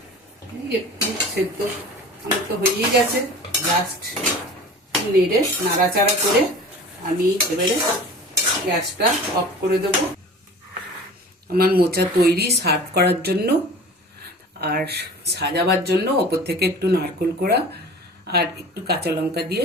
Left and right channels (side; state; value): both; normal; correlation 0.40